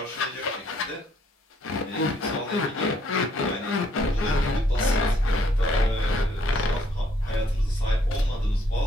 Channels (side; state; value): both; normal; correlation 0.67